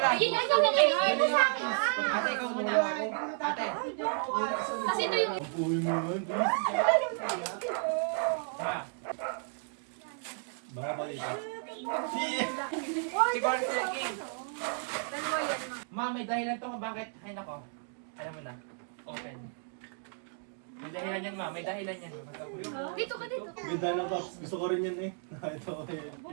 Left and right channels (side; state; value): left; silent; 56 dB below the other